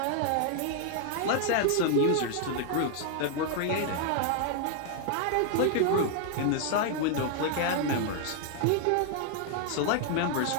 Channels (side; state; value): both; different; correlation 0.00